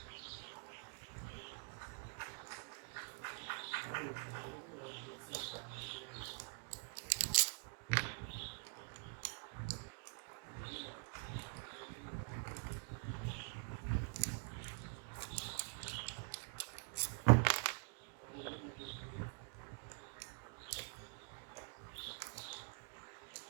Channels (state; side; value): quieter; left; 36.6 dB